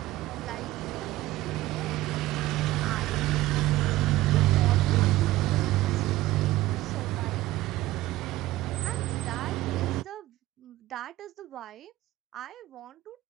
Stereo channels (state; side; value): quieter; left; 16.7 dB